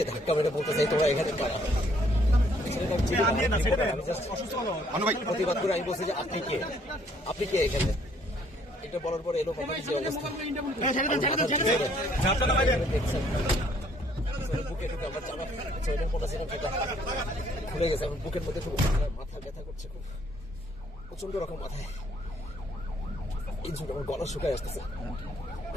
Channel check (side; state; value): both; normal; correlation 0.64